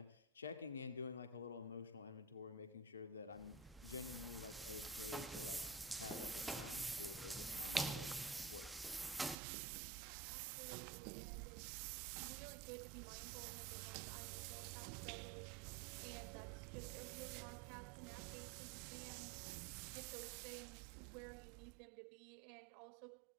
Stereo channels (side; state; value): left; drops out; at 9.3 s